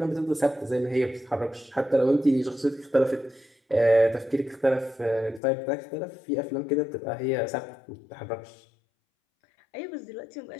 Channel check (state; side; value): drops out; right; at 5.4 s